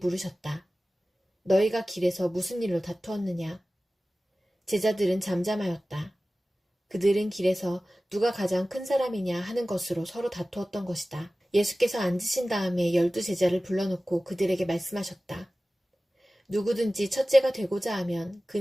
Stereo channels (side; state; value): both; normal; correlation 0.97